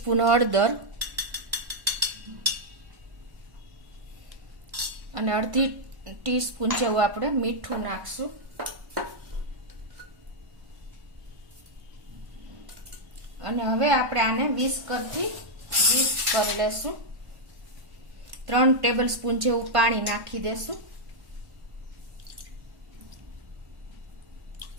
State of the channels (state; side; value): late; left; 1.1 ms